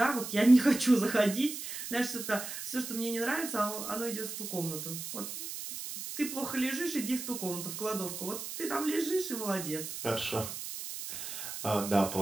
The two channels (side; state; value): right; noise; hiss, 7 dB below the sound